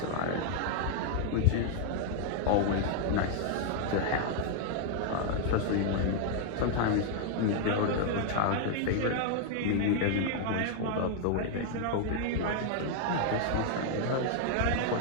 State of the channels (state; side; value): different; both; correlation 0.00